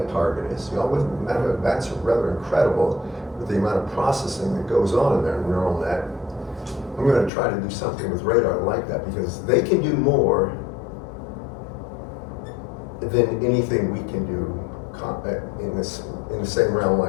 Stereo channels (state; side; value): drops out; right; at 7.3 s